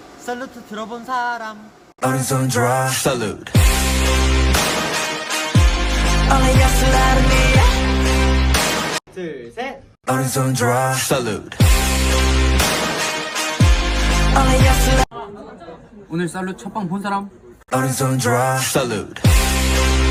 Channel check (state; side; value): identical; both; correlation 1.00